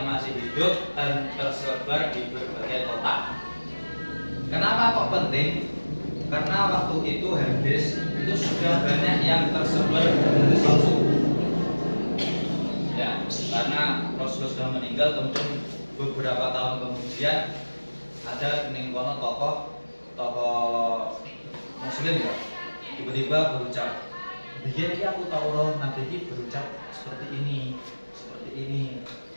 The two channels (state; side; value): inverted; both; correlation -1.00